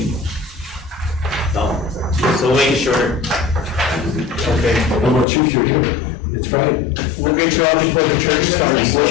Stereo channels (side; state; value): right; drops out; at 5.2 s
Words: No, so make sure. okay. How about you, you're here? It's Friday. We'll get you out before the church